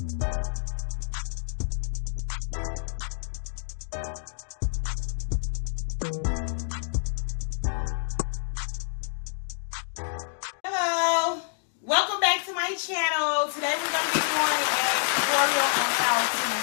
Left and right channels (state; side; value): silent; right; digital silence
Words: welcome back to my channel. Today we're going to be doing a tutorial on how to